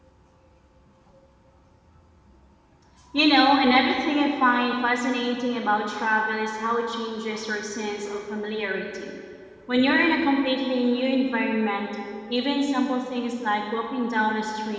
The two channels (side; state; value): both; identical; correlation 1.00